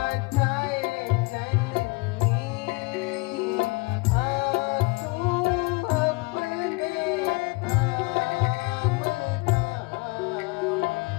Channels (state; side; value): quieter; right; 26.6 dB